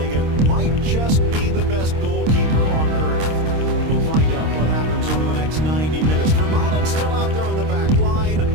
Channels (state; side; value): late; left; 26 ms